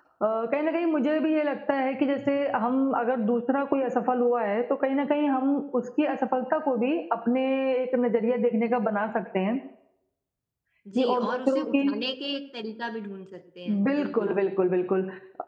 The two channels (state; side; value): identical; both; correlation 1.00